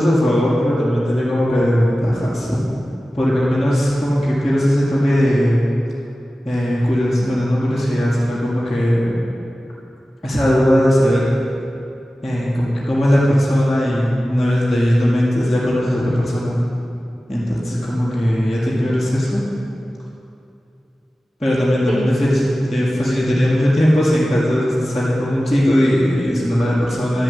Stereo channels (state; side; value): normal; both; correlation 0.95